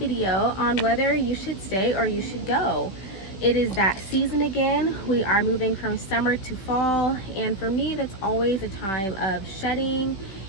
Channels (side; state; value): right; late; 16 ms